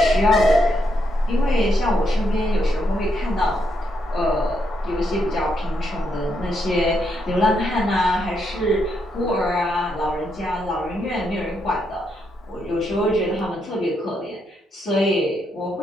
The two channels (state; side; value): normal; both; correlation 0.79